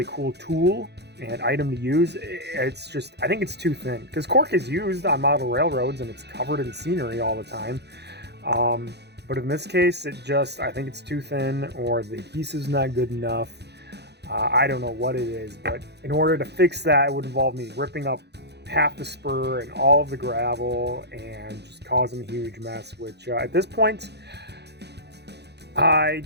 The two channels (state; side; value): late; left; 0.49 ms